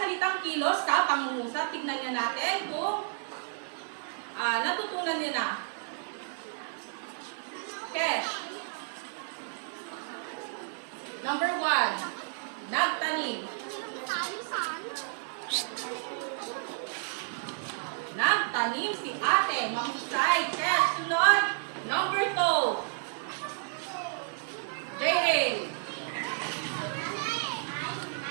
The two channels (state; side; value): silent; left; digital silence